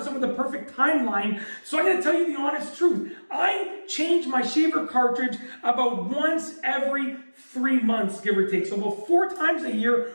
with the perfect timeline. So I'm going to tell you the honest truth. I change my shaver cartridge about once every 3 months, give or take. So about 4 times a year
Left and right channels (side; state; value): both; inverted; correlation -1.00